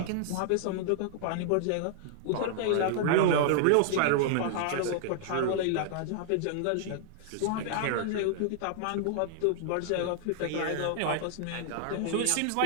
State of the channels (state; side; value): different; both; correlation -0.01